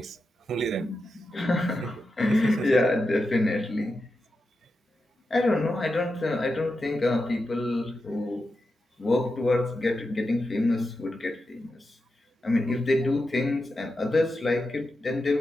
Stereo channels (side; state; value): both; normal; correlation 0.89